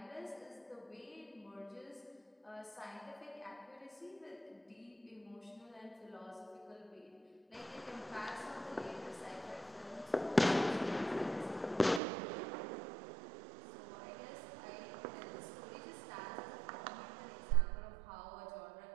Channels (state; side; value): drops out; left; at 12.0 s